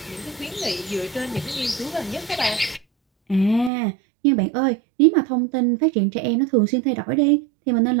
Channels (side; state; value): left; drops out; at 3.7 s